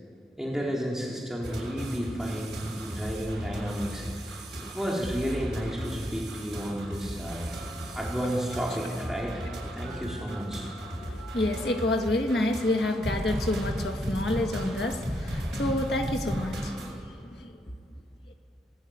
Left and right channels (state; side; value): normal; both; correlation 0.78